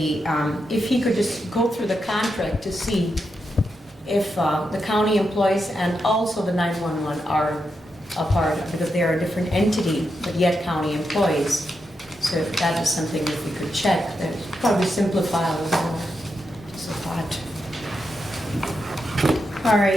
if he could just go through the contract to see if the county employees and also the 911 are a part, because they are a different entity, but yet county employees. So if that is something that we could check, that would probably simplify a little more. Just a thought. All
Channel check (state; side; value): normal; both; correlation 0.85